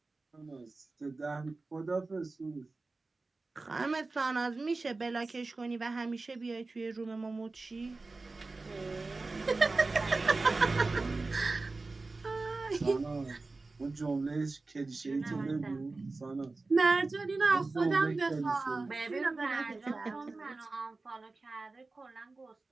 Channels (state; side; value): quieter; left; 3.6 dB